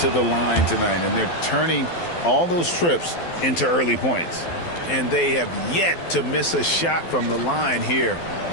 the line tonight, and they're turning all those trips into early points. And they have yet to miss a shot from the line here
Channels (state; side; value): late; right; 12 ms